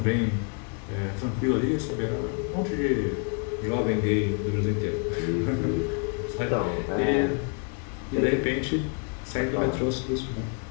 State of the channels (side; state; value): right; quieter; 38.7 dB